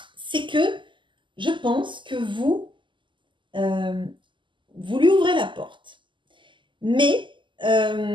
c'est que je pense que vous lui ouvrez la porte. Mais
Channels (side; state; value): left; late; 0.24 ms